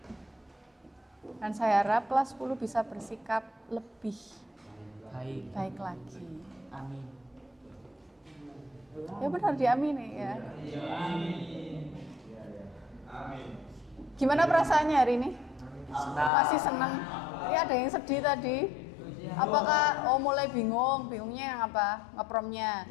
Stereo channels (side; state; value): right; drops out; at 16.3 s